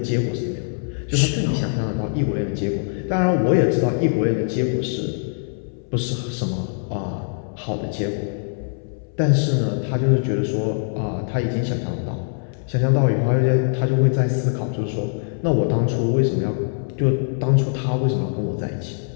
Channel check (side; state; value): right; silent; 64 dB below the other